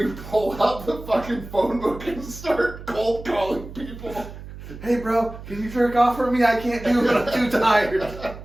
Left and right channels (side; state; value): right; noise; hum, 13 dB below the sound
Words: pull out the fucking phone book and start cold calling people. Hey, bro, can you jerk off for me? I can't do it. I'm too tired. Have